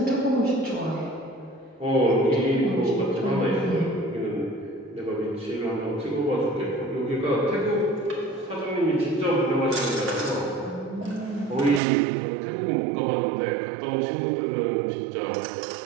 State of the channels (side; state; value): left; drops out; at 11.8 s